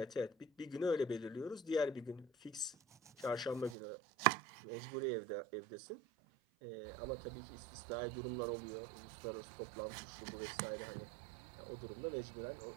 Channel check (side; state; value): left; drops out; at 3.8 s